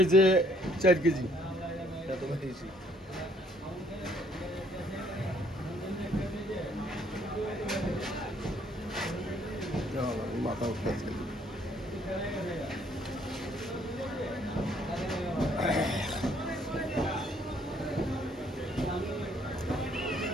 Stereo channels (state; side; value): normal; both; correlation 0.64